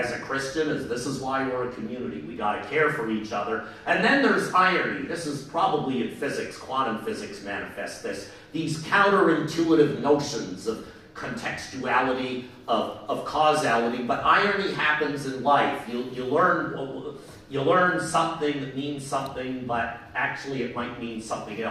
a Christian is this is why we're a community. We got to care for each other. And then there's irony. This is probably in physics. Quantum physics manifests this. These counterintuitive notions of contextuality, of causality. But irony happens in life. You learn something that means something, but actually it might mean something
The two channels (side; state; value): both; identical; correlation 1.00